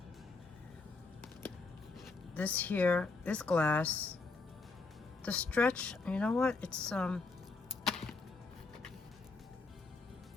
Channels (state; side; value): quieter; right; 3.9 dB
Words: This here is glass. The stretch, you know what? It's